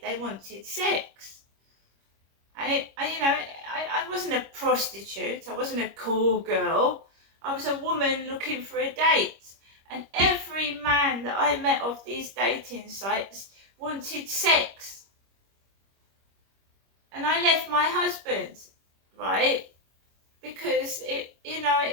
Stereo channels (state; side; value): late; left; 25 ms